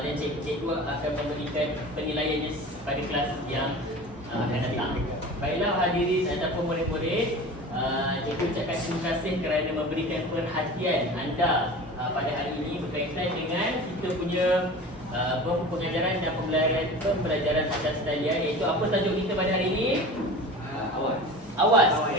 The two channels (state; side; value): normal; both; correlation 0.36